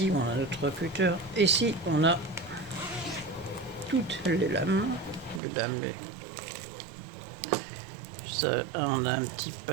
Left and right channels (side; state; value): left; drops out; at 5.4 s